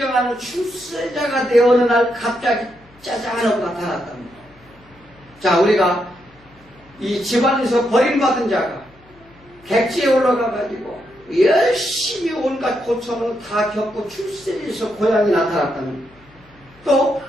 출세자가 되어 어느 날 갑자기 짜잔하고 나타났답니다. 자, 우리가 이 집안에서 버림받은 자가 객지에 올라가가지고 열심히 온갖 고통을 다 겪고 출세에서 고향이 나타났답니다. 또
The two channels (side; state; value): left; noise; hum, 28 dB below the sound